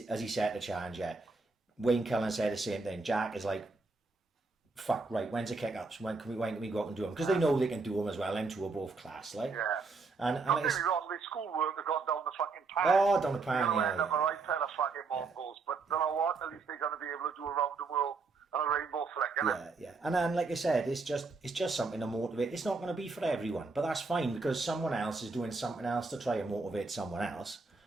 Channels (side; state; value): left; quieter; 4.1 dB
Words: Has he set the challenge yet? Wayne Cullen said the same thing. Jack is like, fuck, right, when's the kick-ups? When can we go out and do them? Because they know they can do them as well. Them two are both class, like. Yeah. And don't get me wrong, the schoolwork have gone down the fucking pan. Oh, down the pan, yeah. End up a right pair of fucking Mongols. But you know what? At least they're going to be able to do around the world on a rainbow flick, innit? Yeah. And then, like I said, it's just something to motivate. It's not going to be for everyone, but that's fine because someone else is doing something else to try and motivate someone else.